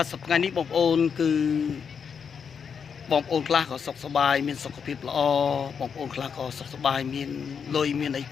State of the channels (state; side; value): quieter; right; 6.6 dB